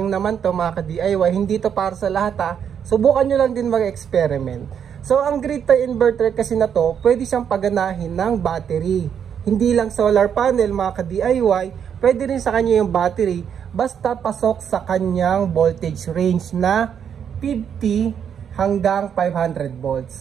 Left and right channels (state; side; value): quieter; left; 8.1 dB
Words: naman to mga ka-DIY, hindi to para sa lahat ha. Subukan nyo lang din mag-experiment. So ang grid tie inverter kasi na to, pwede siyang paganahin ng battery. Hindi lang solar panel mga ka-DIY, pwede rin sa kanya yung battery. Basta pasok sa kanyang voltage range na 50 hanggang 500